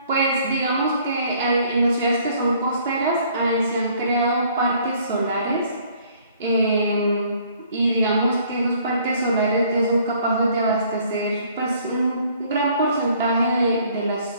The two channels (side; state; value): both; inverted; correlation -0.60